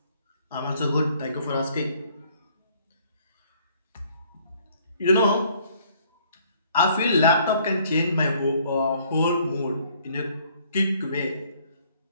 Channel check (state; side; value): inverted; both; correlation -0.62